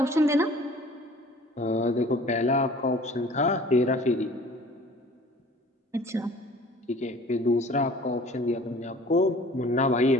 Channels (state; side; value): normal; both; correlation 0.48